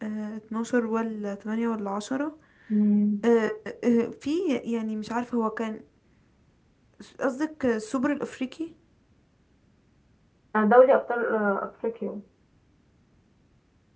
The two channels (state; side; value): identical; both; correlation 1.00